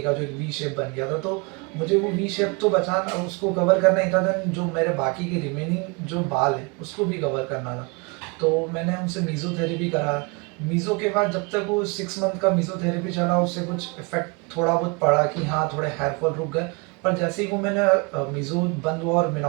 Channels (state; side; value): quieter; left; 29.9 dB